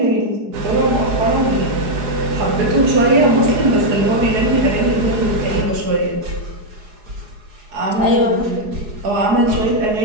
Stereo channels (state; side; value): late; left; 4.8 ms